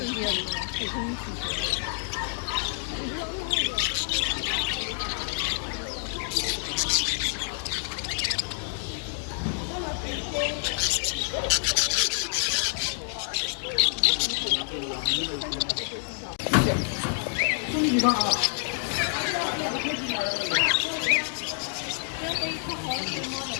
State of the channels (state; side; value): silent; right; digital silence